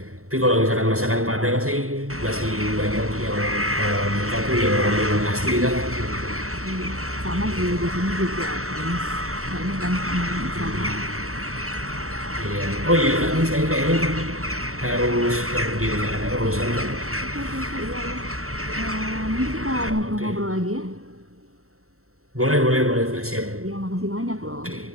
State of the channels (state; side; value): late; left; 0.63 ms